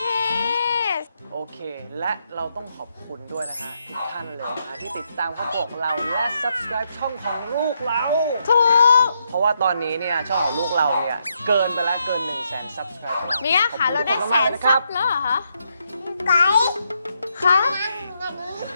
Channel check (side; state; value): both; inverted; correlation -0.79